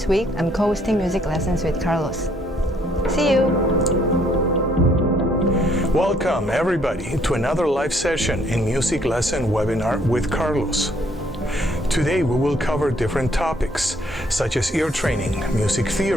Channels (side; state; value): both; normal; correlation 0.66